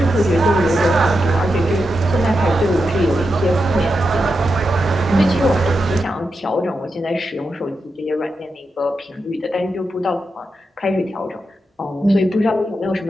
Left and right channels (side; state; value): both; normal; correlation 0.87